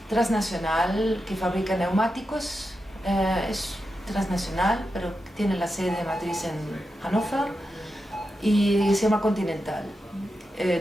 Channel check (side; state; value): both; normal; correlation 0.89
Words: transnacional que fabrica neumáticos, es transnacional, pero tiene la sede matriz en Hannover, y se llama Continental.